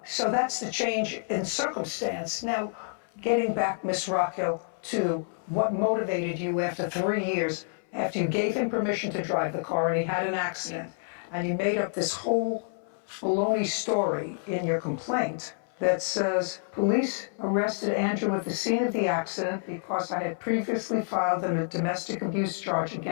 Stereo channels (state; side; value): silent; right; 59 dB below the other